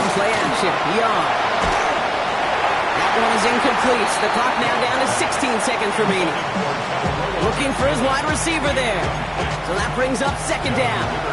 play action. Young. That one is incomplete. The clock now down to 16 seconds remaining. Looking for his wide receiver there. So that brings up 2nd down.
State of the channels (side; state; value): both; identical; correlation 1.00